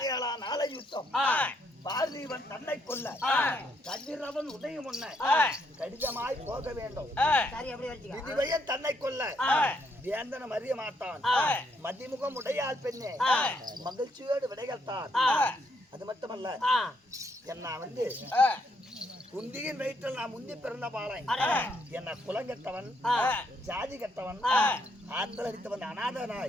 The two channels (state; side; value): normal; both; correlation 0.73